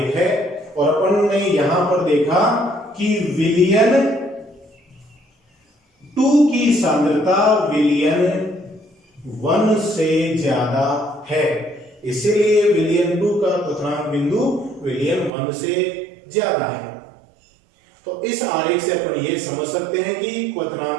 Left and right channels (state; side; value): drops out; left; at 15.3 s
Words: है। और अपन ने यहां पर देखा कि विलयन 2 की सांद्रता विलयन 1 से ज्यादा है, इसीलिए विलयन 2 का क्वथनांक बिंदु विलयन 1 से ज्यादा है। तो इस आरेख से अपन ये समझ सकते हैं कि